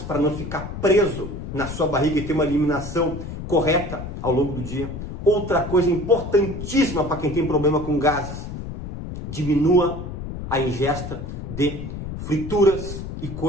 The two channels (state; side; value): noise; left; rumble, 8 dB below the sound